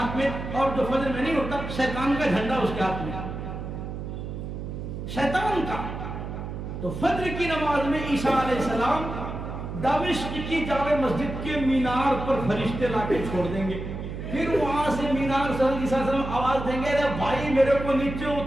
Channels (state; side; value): noise; right; hum, 7 dB below the sound